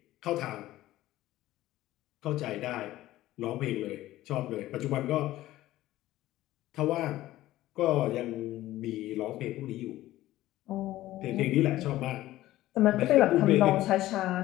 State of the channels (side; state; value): right; quieter; 15.5 dB